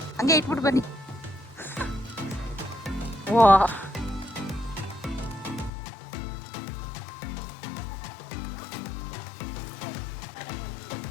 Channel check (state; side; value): drops out; right; at 5.7 s